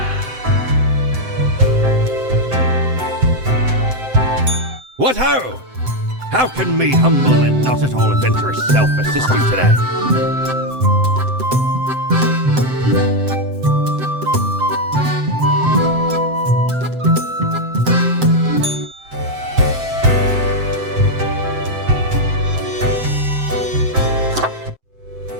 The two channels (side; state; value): left; late; 7.8 ms